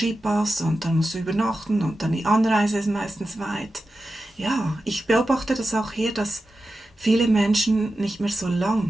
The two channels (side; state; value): both; normal; correlation 0.92